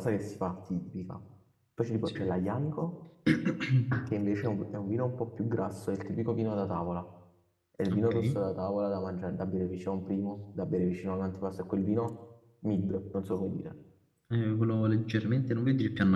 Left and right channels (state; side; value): identical; both; correlation 1.00